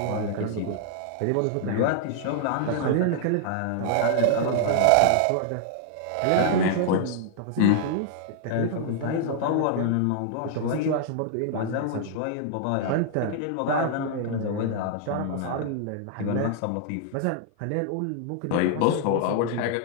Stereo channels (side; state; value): both; different; correlation -0.01